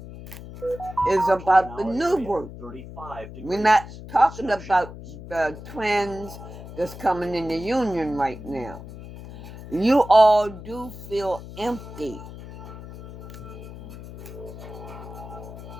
is about the new group. We're not talking about the twins that's coming in the union right now. You all do feel empty.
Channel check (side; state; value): left; noise; hum, 13 dB below the sound